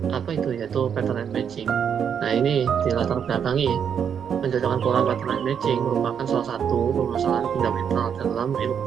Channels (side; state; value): left; quieter; 7.8 dB